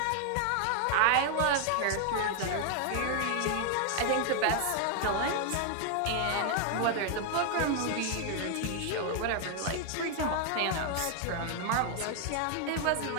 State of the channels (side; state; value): both; different; correlation 0.00